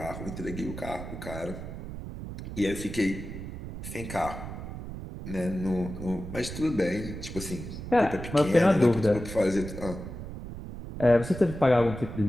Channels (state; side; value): noise; right; rumble, 9 dB below the sound